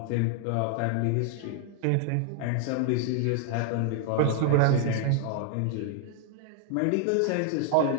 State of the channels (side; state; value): both; different; correlation 0.00